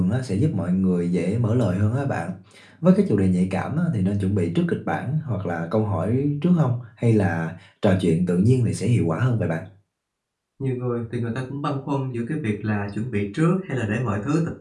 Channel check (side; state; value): both; identical; correlation 1.00